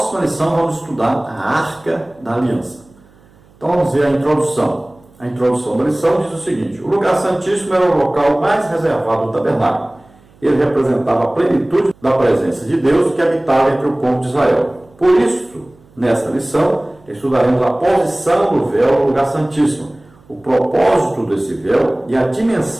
lição vamos estudar a Arca da Aliança. Então vamos ver a introdução. A introdução da lição diz o seguinte: o lugar santíssimo era o local mais reservado do tabernáculo. Ele representava a plenitude da presença de Deus que habitava entre o povo de Israel. Por isso, nesta lição, estudaremos a posição do véu no lugar santíssimo, o propósito desse véu e a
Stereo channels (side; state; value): right; noise; hum, 29 dB below the sound